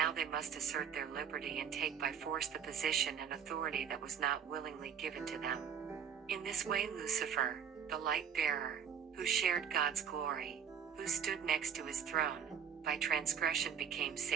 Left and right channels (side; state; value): left; quieter; 7.8 dB